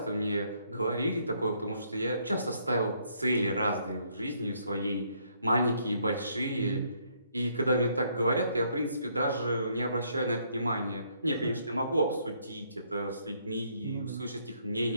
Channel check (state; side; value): inverted; both; correlation -0.70